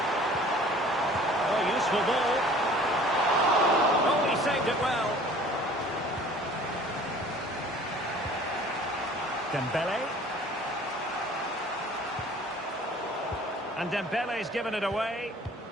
Oh, useful ball. Oh, he saved it well. Dembele. And Dembele's given it away.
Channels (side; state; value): both; normal; correlation 0.49